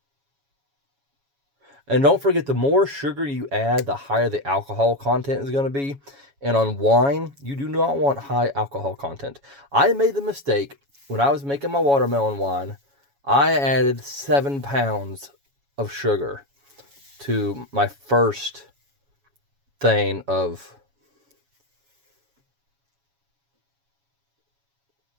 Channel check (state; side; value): late; left; 7.2 ms